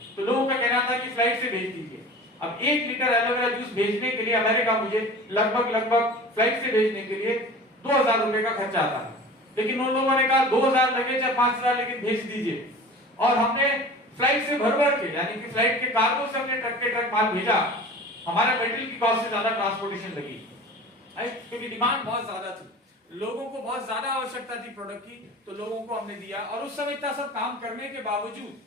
तो लोगों का कहना था कि फ्लाइट से भेज दीजिए। अब 1 लीटर एलोवेरा जूस भेजने के लिए अमेरिका मुझे लगभग फ्लाइट से भेजने के लिए 2,000 रुपए का खर्चा आता है, लेकिन उन लोगों ने कहा 2,000 लगे चाहे 5,000 लेकिन भेज दीजिए। और हमने फ्लाइट से भर के, यानी कि फ्लाइट के कार्गो से हमने ट्रक के ट्रक माल भेजा। हमारा मेटेरियल की कॉस्ट से ज्यादा ट्रांसपोर्टेशन लगी, क्योंकि डिमांड बहुत ज्यादा थी, लोगों को बहुत ज्यादा आवश्यकता थी प्रोडक्ट की, तो लोगों को हमने दिया। और उस समय इतना सब काम करने के बावजूद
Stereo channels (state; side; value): normal; both; correlation 0.39